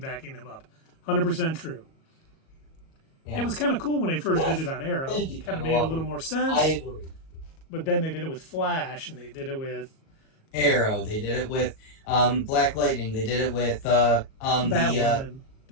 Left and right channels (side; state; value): right; late; 37 ms